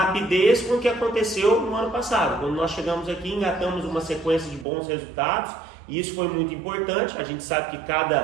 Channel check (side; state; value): left; drops out; at 4.7 s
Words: com o que aconteceu no ano passado. Quando nós chegamos aqui, engatamos uma sequência de bons resultados, e isso foi muito importante. A gente sabe que